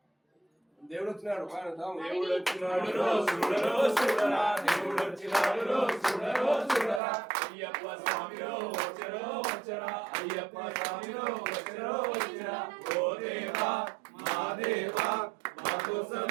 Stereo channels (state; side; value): drops out; left; at 7.0 s